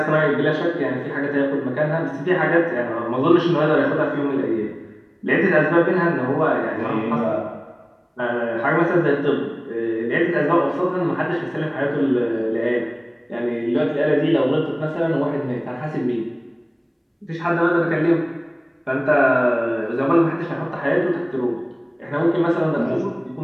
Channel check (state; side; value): identical; both; correlation 1.00